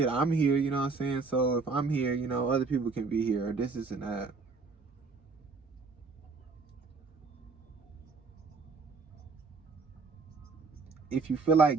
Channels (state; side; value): quieter; left; 4.4 dB